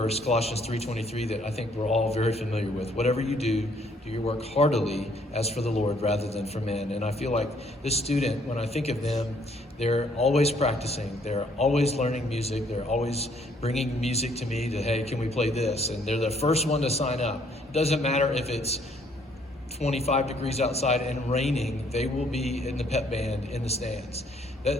Colossians 3:23, that I think we're all very familiar with. Whatever you do your work heartily as for the Lord rather than for men. And I feel like this student, when I think of them, they're always practicing. They're always learning music. They're always bringing music to me to, hey, can we play this? And they're the first one to sign up. It doesn't matter if it's 25 degrees outside and raining, they will be in the pep band in the stands.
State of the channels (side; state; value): both; normal; correlation 0.65